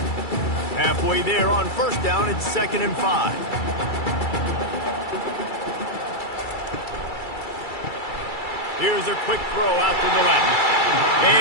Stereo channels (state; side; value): late; right; 2.3 ms